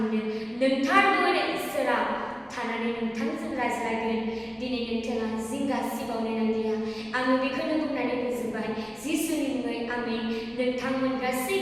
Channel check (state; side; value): identical; both; correlation 1.00